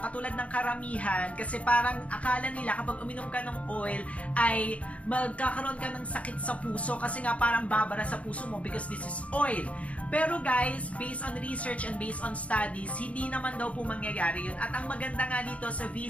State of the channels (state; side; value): late; right; 0.065 ms